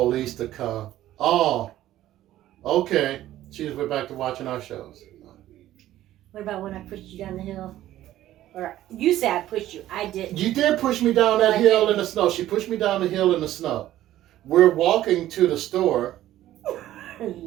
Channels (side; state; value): left; quieter; 13.8 dB